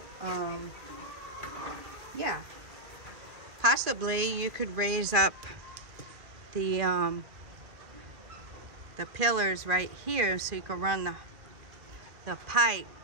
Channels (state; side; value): late; left; 2.0 ms